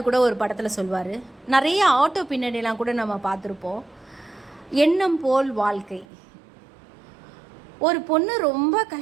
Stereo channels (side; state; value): left; drops out; at 6.1 s